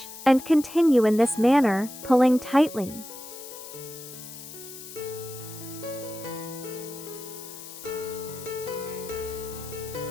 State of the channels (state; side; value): noise; left; hiss, 13 dB below the sound